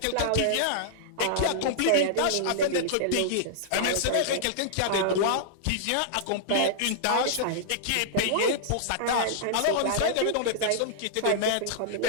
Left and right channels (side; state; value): both; different; correlation -0.01